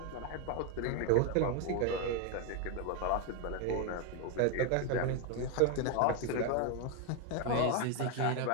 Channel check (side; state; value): both; different; correlation 0.01